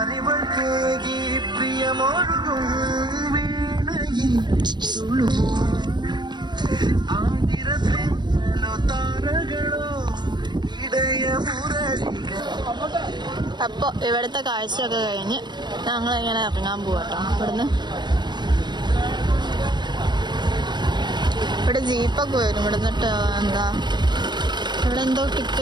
പ്രിയമൊഴുകും വീണയിൽ ആതിരത്തിലോ താരകളോ ഇടയമുരളികൾ. അപ്പൊ ഇവിടുത്തെ കാഴ്ചയൊക്കെ കഴിഞ്ഞ് ഞങ്ങൾ ഇങ്ങനെ ഇറങ്ങാൻ പോവാട്ടോ. ഇവിടുന്ന് ഇവിടെ ജീപ്പൊക്കെ വരും. ഇവിടുന്നിട്ട് എന്താ ഇവിടെ എന്തോ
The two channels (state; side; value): late; left; 0.21 ms